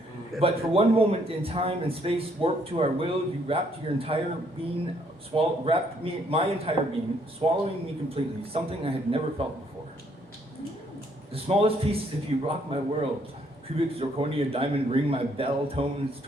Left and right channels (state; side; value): normal; both; correlation 0.68